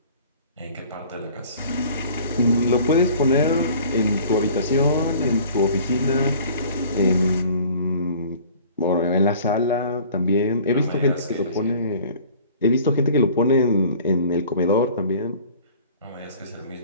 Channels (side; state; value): both; inverted; correlation -0.48